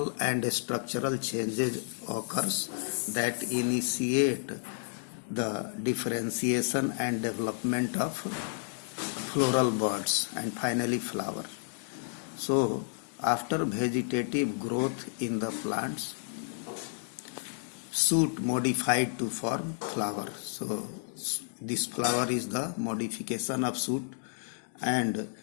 and structural changes occurs that initiate the differentiation and development of floral buds and finally flower. So after vegetative growth in the plants, shoot modified to form flower. So this flower is the modification of shoot, and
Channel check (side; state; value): right; silent; digital silence